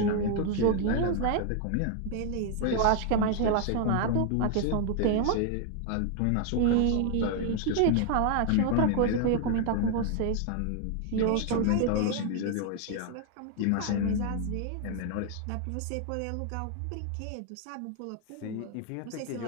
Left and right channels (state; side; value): different; both; correlation 0.00